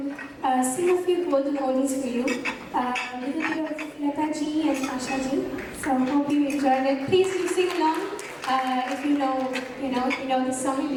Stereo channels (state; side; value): identical; both; correlation 1.00